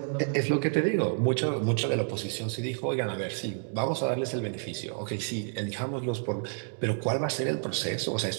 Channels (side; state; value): left; silent; 58 dB below the other